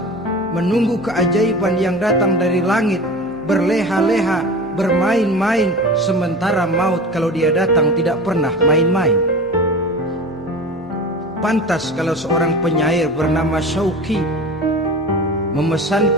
menunggu keajaiban yang datang dari langit, berleha-leha, bermain-main, sementara maut kalau dia datang tidak pernah main-main. Pantas kalau seorang penyair bernama Syauqi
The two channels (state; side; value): normal; both; correlation 0.33